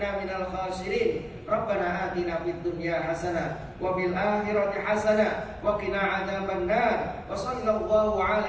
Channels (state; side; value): identical; both; correlation 1.00